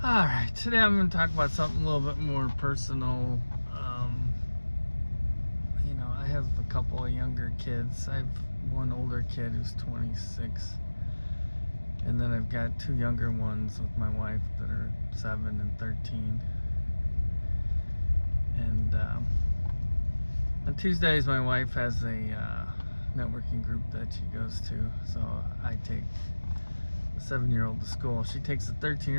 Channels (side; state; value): both; inverted; correlation -1.00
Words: Alright, today I'm going to talk about something a little bit more personal. I have a couple of younger kids. I have one older kid who's 26. And then I've got two younger ones with my wife that are 7 and 13. And on Tuesdays, my wife has a networking group that she goes to. So I take the 7-year-old to school. She takes the